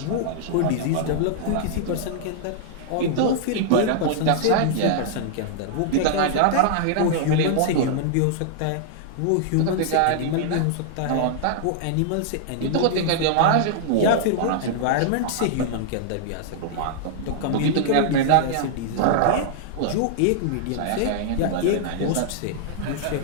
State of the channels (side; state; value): both; different; correlation -0.01